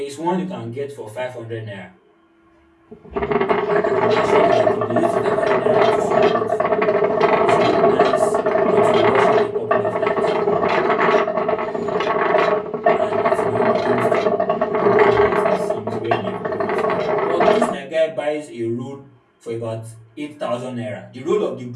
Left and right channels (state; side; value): identical; both; correlation 1.00